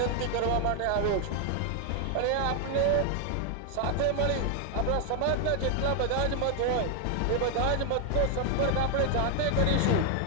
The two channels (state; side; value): different; both; correlation 0.00